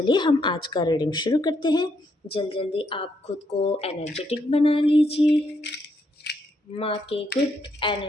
हम आज का रीडिंग शुरू करते हैं। जल्दी आप खुद को एनर्जेटिक बना लीजिए। माँ के गुड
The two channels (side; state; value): both; normal; correlation 0.76